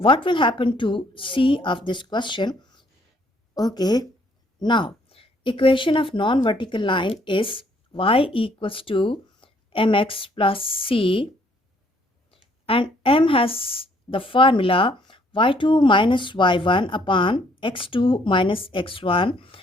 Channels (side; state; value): both; normal; correlation 0.65